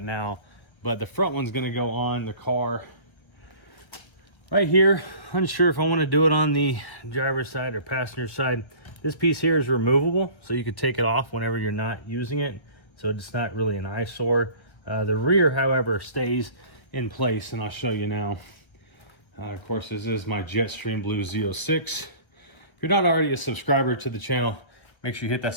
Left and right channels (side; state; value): right; late; 1.3 ms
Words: now. But the front one's going to go on the car right here. Unsure if I want to do it on the driver's side or passenger side. This piece here is removable, so you could take it off whenever you're not using it, so it's not really an eyesore. The rear, however, stays in place, and I'll show you now. Of course, this is my Jetstream Blue Z06. If you're not already a subscriber to the channel, make sure you hit that